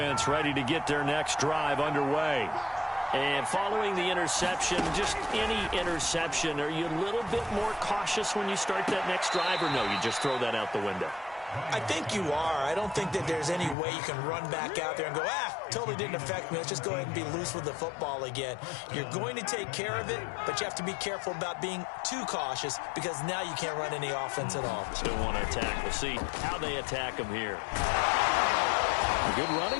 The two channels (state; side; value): drops out; right; at 13.8 s